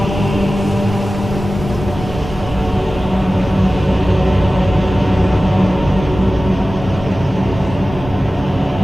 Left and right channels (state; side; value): normal; both; correlation 0.96